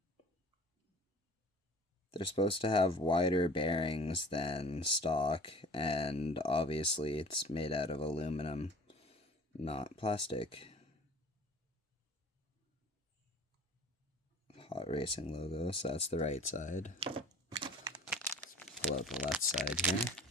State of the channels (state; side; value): normal; both; correlation 0.46